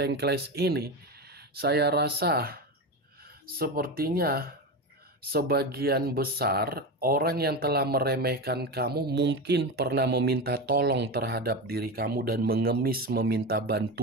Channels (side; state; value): both; normal; correlation 0.20